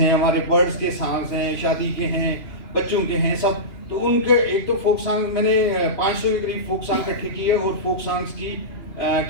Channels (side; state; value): right; late; 2.9 ms